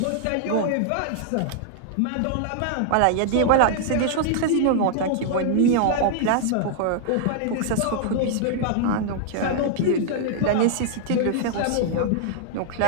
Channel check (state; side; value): different; both; correlation -0.01